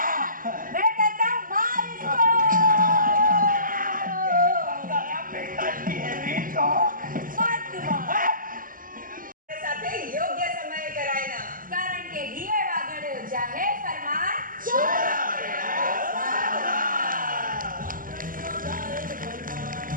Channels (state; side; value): late; left; 0.40 ms